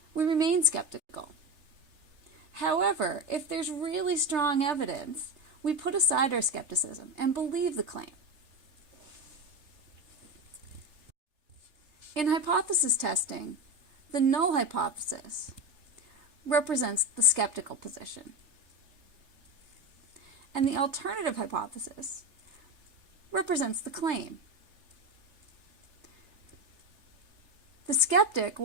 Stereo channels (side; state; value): left; late; 3.3 ms